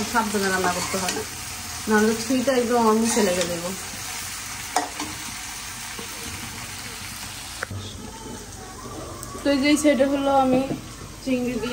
সাবধানে রান্না করতে হয়, নাহলে ছুঁইটা একদম আমার মুখে লেগে দেবো। তো এই যে সাইডে হলো আমি চিংড়ি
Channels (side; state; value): both; identical; correlation 1.00